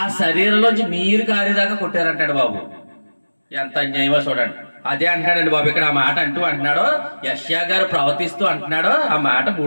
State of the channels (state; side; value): inverted; both; correlation -1.00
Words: శరీరంలోంచి నీరు కారేదాకా కొట్టారంటాడు బాబు. ఎంత అన్యాయమో చూడండి. అదే అంటున్నాడండి బాబు ఇక్కడ. ఆ మాట అంటున్నాడు యెషయా గారు ప్రవర్తిస్తూ అంటున్నాడు. ఆ మాట